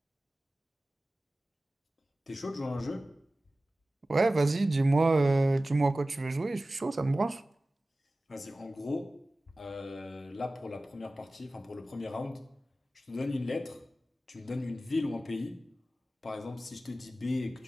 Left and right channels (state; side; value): normal; both; correlation 0.96